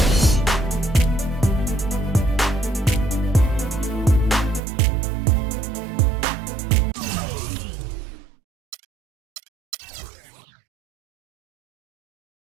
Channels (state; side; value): drops out; left; at 4.6 s